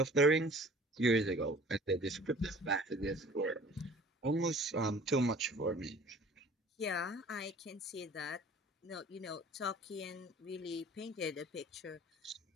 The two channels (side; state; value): both; normal; correlation 0.48